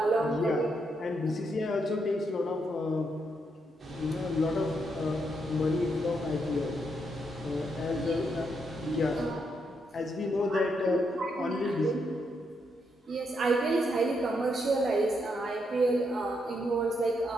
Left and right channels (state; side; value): normal; both; correlation 0.79